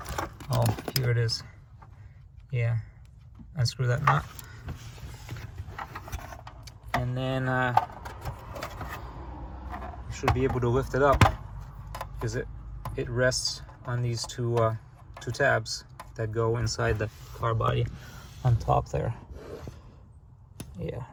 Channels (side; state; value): both; identical; correlation 1.00